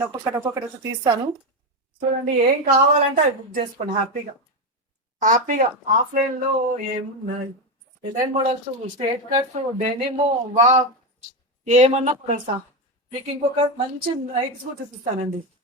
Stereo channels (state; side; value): normal; both; correlation 0.11